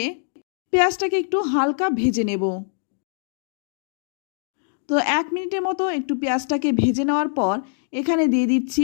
পেঁয়াজটাকে একটু হালকা ভেজে নেব। তো 1 মিনিটের মতো একটু পেঁয়াজটাকে ভেজে নেওয়ার পর এখানে দিয়ে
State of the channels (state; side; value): silent; right; digital silence